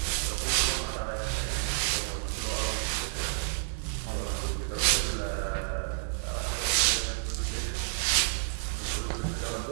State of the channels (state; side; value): silent; left; digital silence